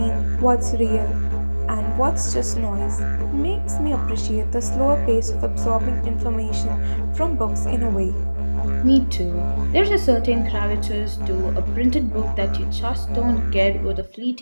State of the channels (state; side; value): inverted; both; correlation -1.00